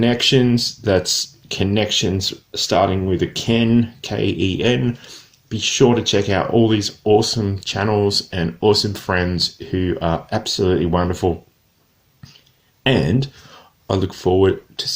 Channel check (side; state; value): both; identical; correlation 1.00